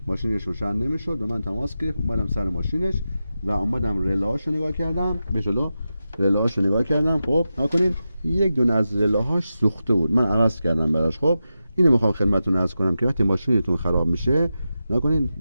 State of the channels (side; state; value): both; inverted; correlation -0.91